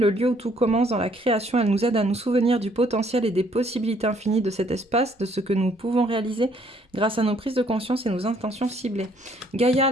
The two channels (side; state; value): both; normal; correlation 0.64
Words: lieu où tout commence dans la création. Elle nous aide à nous souvenir du potentiel et des possibilités infinies de cet espace, de ce que nous pouvons réaliser grâce à nos prises de conscience et nos intentions ciblées. Gaïa,